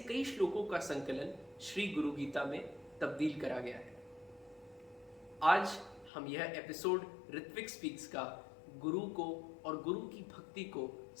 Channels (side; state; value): right; drops out; at 6.1 s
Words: श्लोकों का संकलन श्री गुरु गीता में तब्दील करा गया है। आज हम यह एपिसोड ऋत्विक स्पीक्स का गुरु को और गुरु की भक्ति को